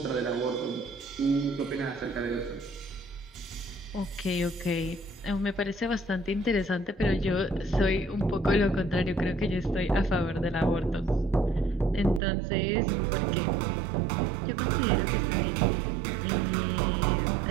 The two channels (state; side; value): drops out; left; at 12.2 s